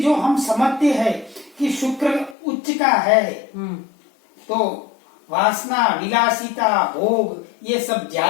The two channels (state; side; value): drops out; right; at 2.4 s